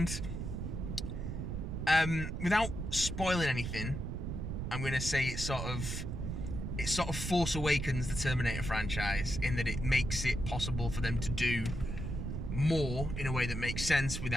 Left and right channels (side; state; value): right; noise; rumble, 4 dB below the sound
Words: without spoiling anything, I'm going to say it sort of Force Awakens the Terminator franchise in that it makes it possible for them to do more in a way that makes sense